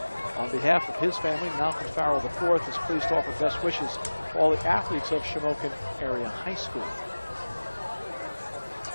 On behalf of his family, Malcolm Farrell IV is pleased to offer best wishes to all the athletes of Shamokin Area High School.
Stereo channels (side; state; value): both; inverted; correlation -1.00